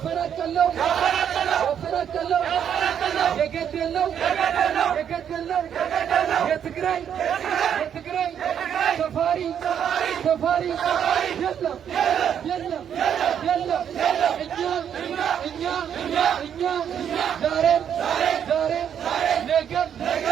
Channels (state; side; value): quieter; left; 8.8 dB